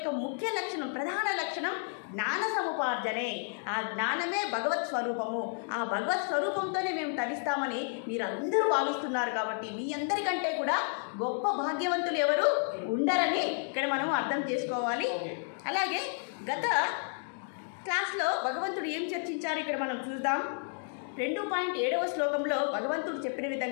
ముఖ్య లక్షణం, ప్రధాన లక్షణం జ్ఞాన సముపార్జనే. ఆ జ్ఞానమే భగవత్ స్వరూపము. ఆ భగవత్ స్వరూపంతోనే మేము తరిస్తామని మీరు అందరూ భావిస్తున్నారు. కాబట్టి మీ అందరికంటే కూడా గొప్ప భాగ్యవంతులు ఎవరు ఉండరని ఇక్కడ మనం అర్థం చేసుకోవాలి. అలాగే గత క్లాస్లో భగవంతుడు ఏం చర్చించారు ఇక్కడ మనం చూద్దాం. 2.7వ శ్లోకంలో భగవంతుడు చెప్పిన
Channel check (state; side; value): silent; right; 55 dB below the other